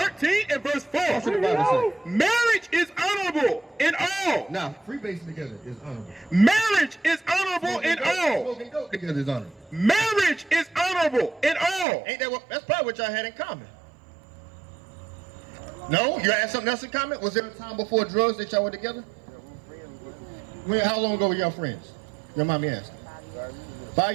and verse 4. That's what the Bible says. Marriage is honorable in all. Now, freebasing together is honorable. Marriage is honorable in all. Smoking dope together is honorable. Marriage is honorable in all. Ain't that what? That's probably what y'all had in common. No? You had something else in common? Was there a time before drugs that y'all were together? How long ago were y'all friends? Your mommy asked. 5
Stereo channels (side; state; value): left; drops out; at 11.9 s